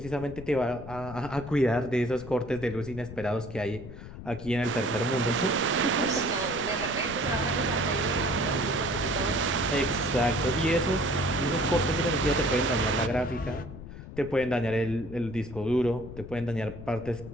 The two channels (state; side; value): noise; left; rumble, 12 dB below the sound